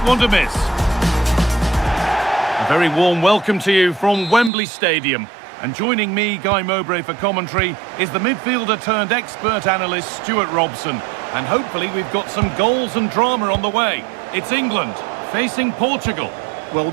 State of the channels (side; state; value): left; drops out; at 4.5 s